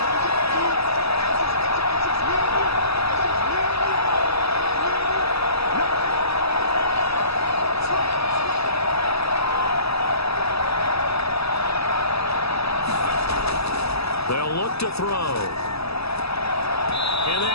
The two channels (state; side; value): late; right; 0.78 ms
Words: They'll look to throw. And